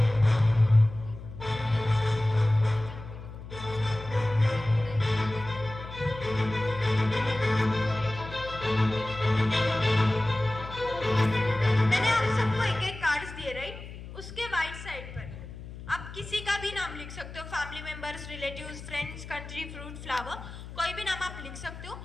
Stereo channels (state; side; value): noise; left; hum, 13 dB below the sound